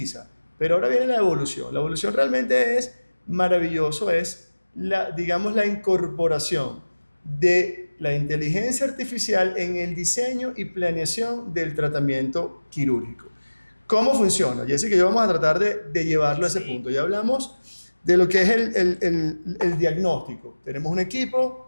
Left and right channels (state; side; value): inverted; both; correlation -1.00